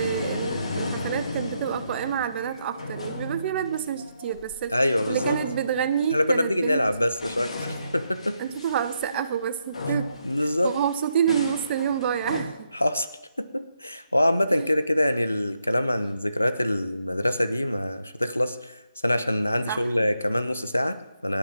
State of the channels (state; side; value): inverted; both; correlation -0.80